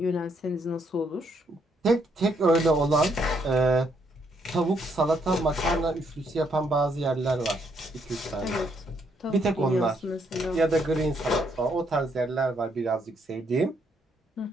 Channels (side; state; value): both; normal; correlation 0.73